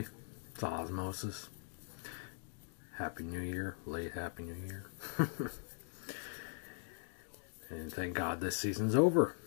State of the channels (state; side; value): silent; right; digital silence